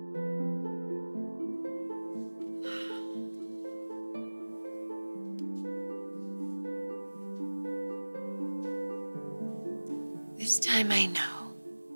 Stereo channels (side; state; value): both; inverted; correlation -1.00